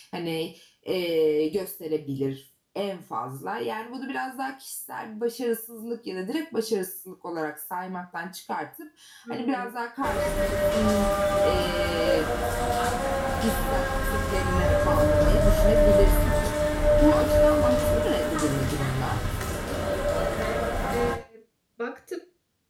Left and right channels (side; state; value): both; identical; correlation 1.00